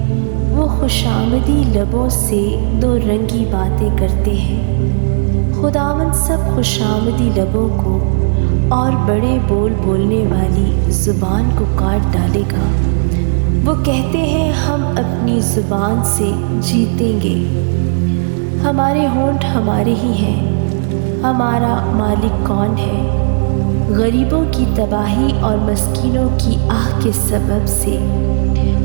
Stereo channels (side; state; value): left; silent; digital silence